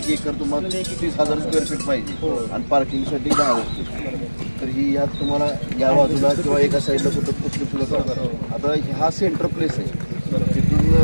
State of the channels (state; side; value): inverted; both; correlation -1.00